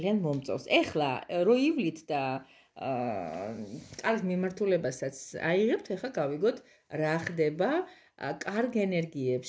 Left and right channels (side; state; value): both; identical; correlation 1.00